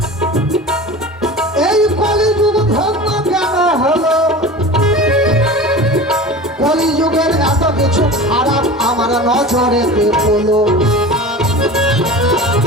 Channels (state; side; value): normal; both; correlation 0.35